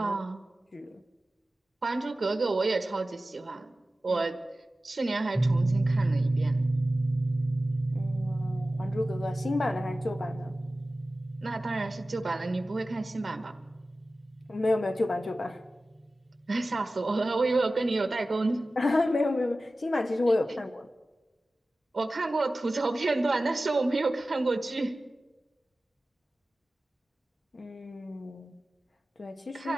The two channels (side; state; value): both; normal; correlation 0.96